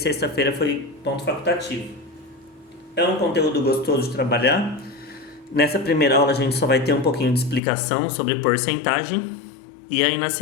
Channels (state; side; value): drops out; right; at 7.6 s